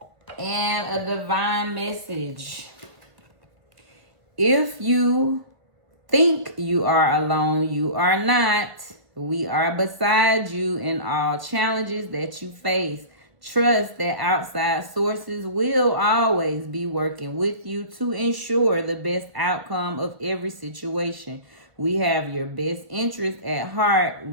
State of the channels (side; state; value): left; late; 1.7 ms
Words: And a divine message. If you think you are alone, you are not. We are beside you in all challenges that you face. Trust that outside sources will always be working with you to ensure the best outcome of every situation. We have your best interest at heart.